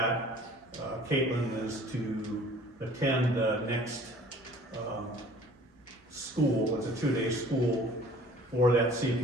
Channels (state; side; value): normal; both; correlation 0.50